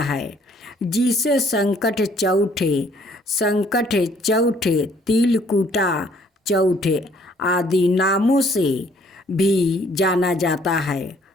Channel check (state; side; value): normal; both; correlation 0.62